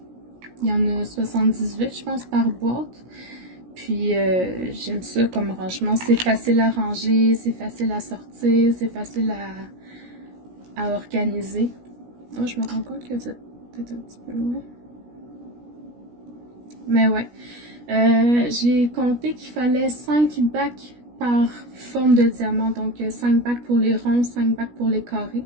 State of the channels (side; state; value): left; late; 17 ms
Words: Il y en a 78, je pense, par boîte. Puis, j'aime ça comme rangement. C'est facile à ranger, c'est facile à sortir, c'est facile à organiser. Oh, je me rends compte que vous êtes peut-être un petit peu loin. Mais ouais. J'ai compté qu'il fallait 5 bacs par forme de diamant. Donc, 5 bacs pour les ronds, 5 bacs pour les carrés.